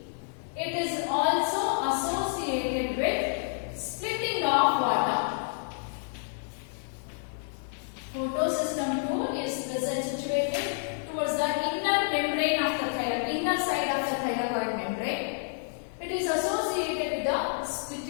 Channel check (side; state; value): right; silent; digital silence